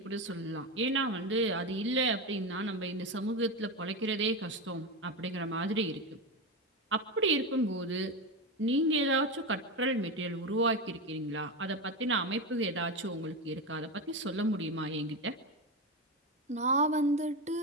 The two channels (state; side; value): normal; both; correlation 0.16